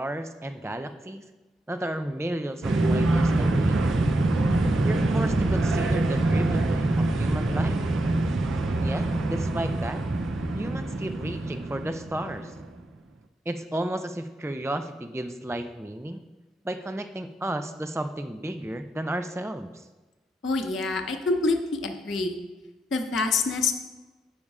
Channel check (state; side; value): normal; both; correlation 0.83